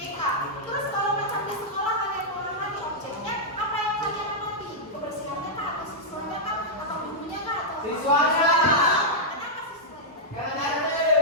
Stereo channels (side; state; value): both; normal; correlation -0.07